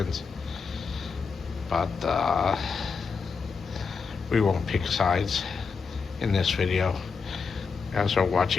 But we won't pick sides in this video, as we're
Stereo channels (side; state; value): right; quieter; 5.2 dB